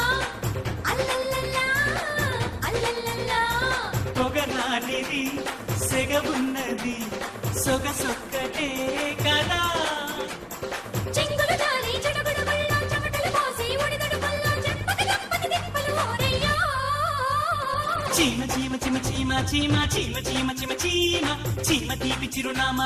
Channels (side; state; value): both; identical; correlation 1.00